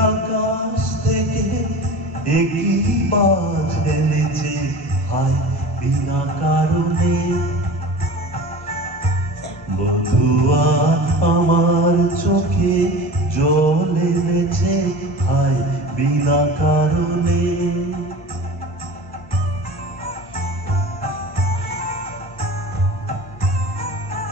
আকাশ থেকে একই বাজ এনেছে হায় বিনা কারণে। বধুয়া আমার চোখে জল এনেছে হায় বিনা কারণে।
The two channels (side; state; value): both; normal; correlation 0.36